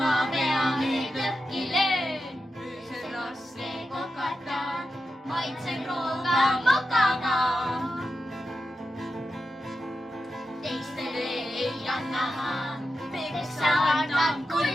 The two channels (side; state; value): both; normal; correlation 0.90